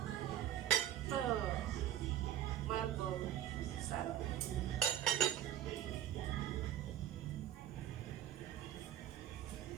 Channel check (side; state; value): left; quieter; 11.7 dB